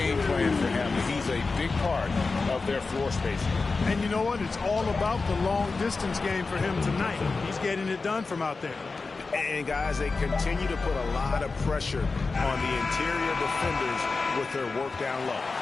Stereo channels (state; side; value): quieter; right; 4.1 dB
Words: plan for him. He's a big part of their floor spacing. And you know what? It's all about the long-distance game for him tonight. He's getting it done from out there. And, guys, they continue to put a lot of pressure on the interior defenders with their work down low.